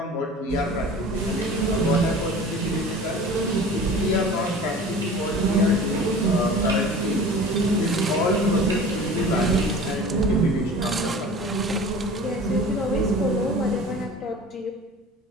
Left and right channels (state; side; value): normal; both; correlation 0.40